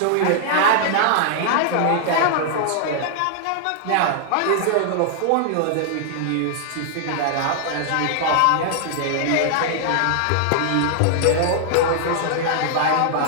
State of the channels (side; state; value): both; different; correlation -0.01